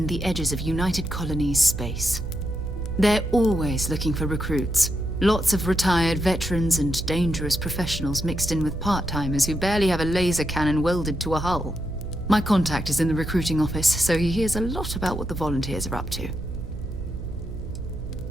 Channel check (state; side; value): noise; right; hum, 7 dB below the sound